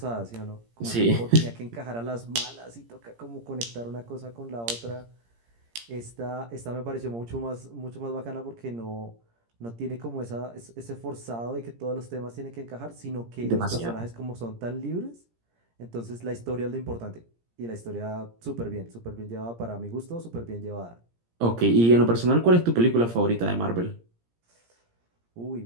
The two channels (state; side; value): late; left; 17 ms